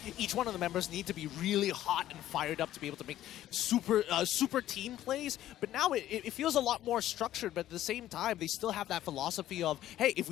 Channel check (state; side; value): quieter; right; 13.2 dB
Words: each one of the members need to be really hot and fired up to be able to make super team plays, but now it feels a lot more structured, but at the same time, they still have that philosophy of, hey, if